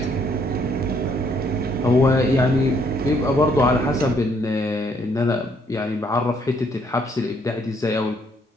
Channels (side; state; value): both; normal; correlation 0.68